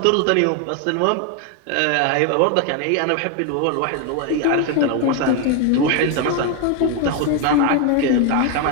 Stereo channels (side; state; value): both; different; correlation 0.01